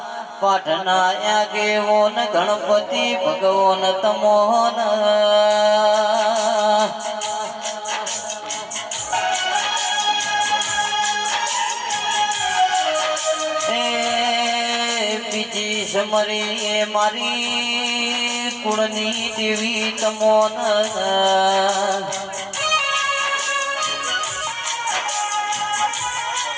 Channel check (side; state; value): both; identical; correlation 1.00